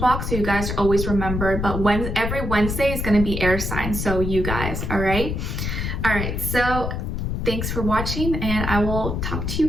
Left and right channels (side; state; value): left; noise; rumble, 3 dB below the sound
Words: so you guys are always remembered. But every Wednesday is going to be air signs, so you guys, all right? All right, so thanks for watching, and I will talk to you